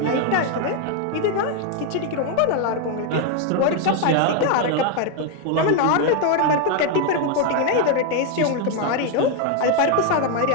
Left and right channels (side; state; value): both; different; correlation 0.01